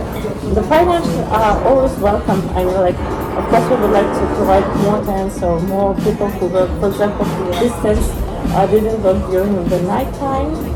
the financials are always welcome. I mean, like, of course, we would like to provide more tents or more people who work, for example, distance didn't work during the night time.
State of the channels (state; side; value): identical; both; correlation 1.00